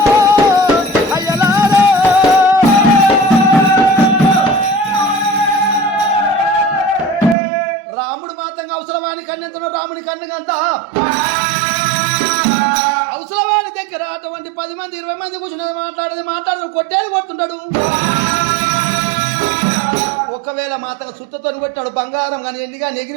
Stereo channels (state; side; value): drops out; left; at 7.4 s